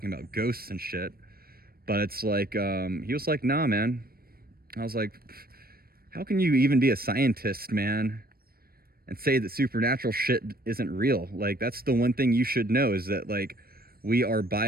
about ghosts and shit, but it's like, he was like, nah, man. I was like, how can you even be a scientist, man, and say that supernatural shit isn't real? Like, that's the one thing you should know, is that like, we are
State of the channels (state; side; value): late; left; 0.44 ms